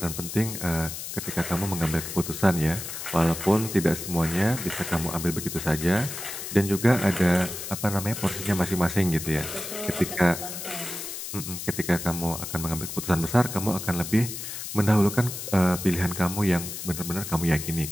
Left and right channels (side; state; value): left; noise; hiss, 7 dB below the sound